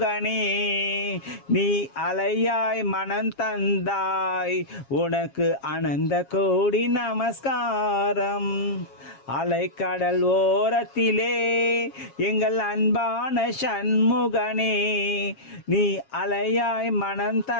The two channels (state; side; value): late; right; 7.3 ms